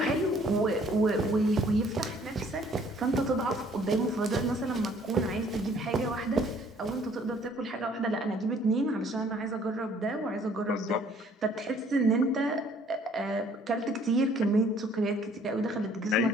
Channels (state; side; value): normal; both; correlation 0.59